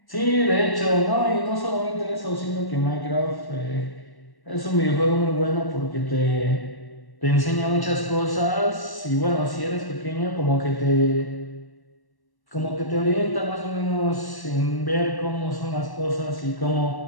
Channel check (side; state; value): right; late; 1.1 ms